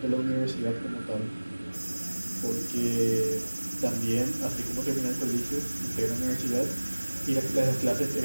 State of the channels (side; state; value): both; inverted; correlation -1.00